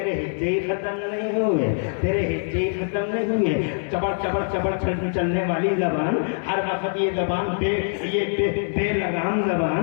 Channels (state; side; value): silent; right; 63 dB below the other